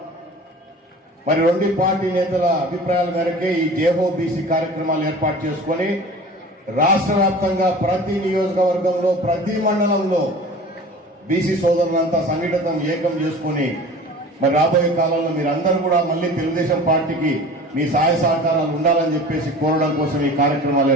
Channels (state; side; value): normal; both; correlation 0.40